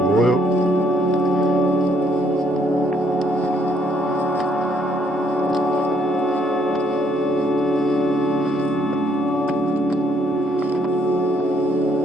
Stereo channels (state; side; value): normal; both; correlation 0.70